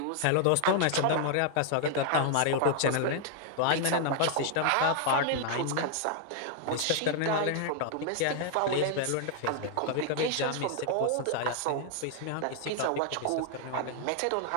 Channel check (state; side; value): different; both; correlation 0.00